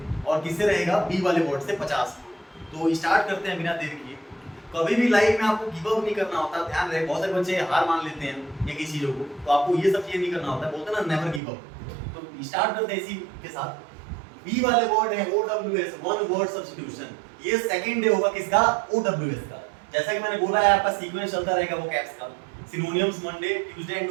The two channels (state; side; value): drops out; left; at 11.4 s